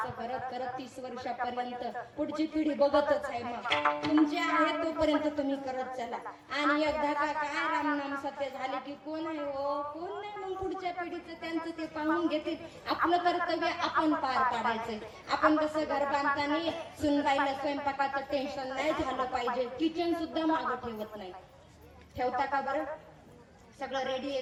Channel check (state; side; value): identical; both; correlation 1.00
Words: करत करत 30 वर्षापर्यंत पुढची पिढी बघतच आहे. मग तुमचे आहे तोपर्यंत तुम्ही करत चला. आणि एकदा का काय रामनाम सत्य झाले की कोण आहे हो, कोण नाही. मग पुढच्या पिढीचं त्यांचं ते पाहून घेतील. आपलं कर्तव्य आपण पार पाडायचंय. आपण कसं घर बांधताना सुनबाईला स्वयंपाकाचं टेन्शन नाही झालं पाहिजे. किचन सुद्धा मागं ठेवत नाही. ठेवता का बरं? सगळं रेडी आहे